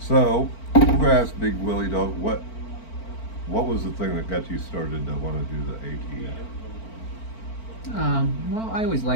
I'm going to ask BigWillyDawg, what was the thing that got you started to want to do the AT? Well, I always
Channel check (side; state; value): right; late; 4.4 ms